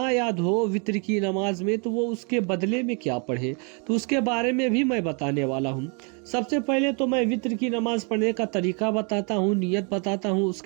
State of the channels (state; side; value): quieter; left; 35.7 dB